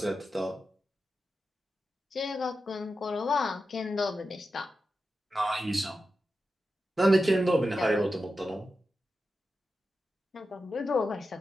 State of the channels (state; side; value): normal; both; correlation 0.91